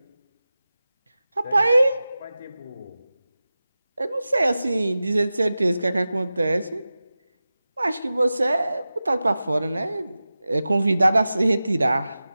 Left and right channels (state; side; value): inverted; both; correlation -0.95